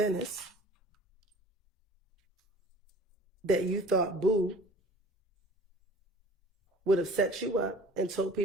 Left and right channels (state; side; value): normal; both; correlation 0.45